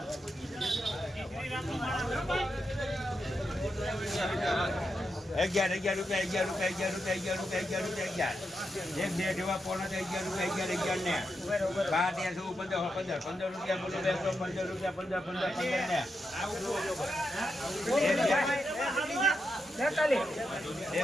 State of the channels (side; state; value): both; normal; correlation 0.85